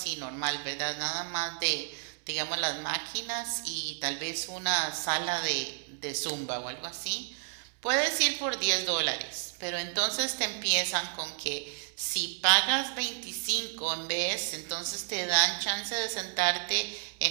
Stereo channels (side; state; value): left; silent; digital silence